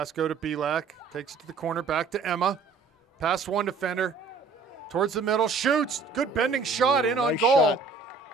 to Belak. Takes it to the corner, back to Emma. Past one defender. Towards the middle, shoots. Good bending shot in on goal.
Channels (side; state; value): left; quieter; 4.6 dB